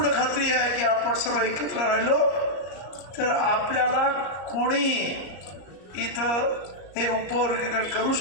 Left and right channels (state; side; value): late; right; 34 ms